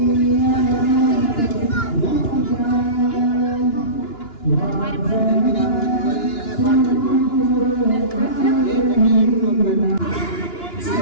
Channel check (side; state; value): right; late; 2.9 ms